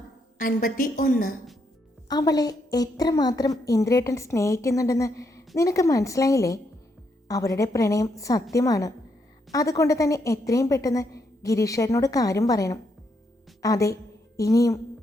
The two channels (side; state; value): both; normal; correlation 0.77